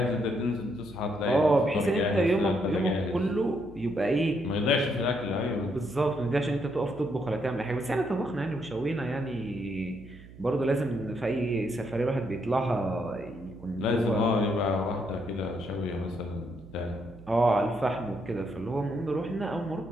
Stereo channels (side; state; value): right; noise; hum, 18 dB below the sound